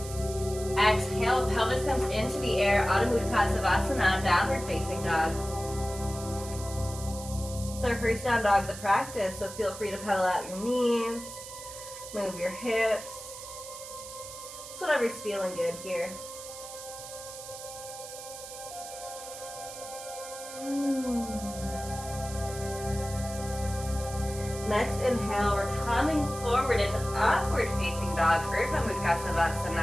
Exhale, pelvis comes into the air, Adho Mukha Savasana, downward facing dog. It's our first down dog of the practice, so feel free to pedal out your knees, move your hips. It's whatever's feeling good here. Next inhale, we're coming forward into upward facing dog, Urdhva Mukha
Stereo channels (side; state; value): right; noise; hiss, 12 dB below the sound